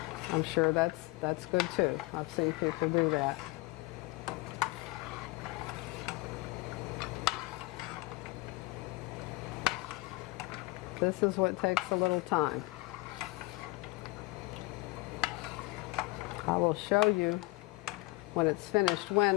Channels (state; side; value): quieter; right; 22.0 dB